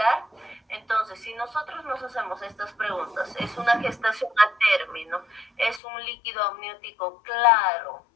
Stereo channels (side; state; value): right; drops out; at 5.8 s